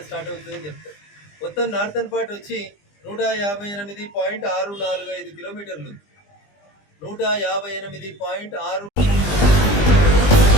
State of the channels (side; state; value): right; late; 20 ms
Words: స్టార్ట్ అవుతుందని చెప్తారు. మొత్తం నార్తన్ పార్ట్ వచ్చి 158.645 కిలోమీటర్లు. 158.6